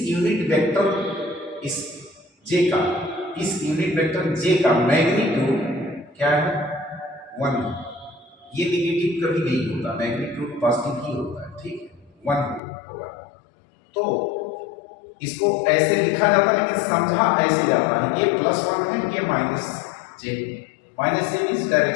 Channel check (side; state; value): right; drops out; at 12.6 s